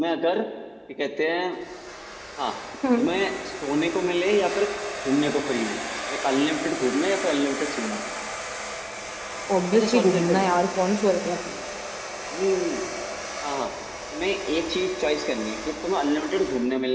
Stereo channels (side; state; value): both; identical; correlation 1.00